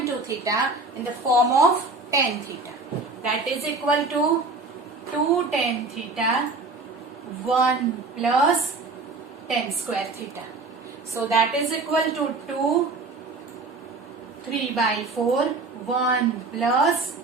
2 theta in the form of tan theta. That is equal to 2 tan theta 1 plus tan square theta. So that is equal to 2 3 by 4 1 plus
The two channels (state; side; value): quieter; left; 3.5 dB